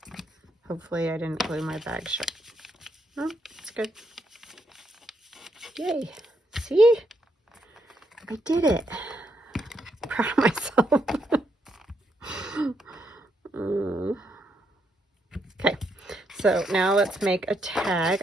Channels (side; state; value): both; normal; correlation 0.77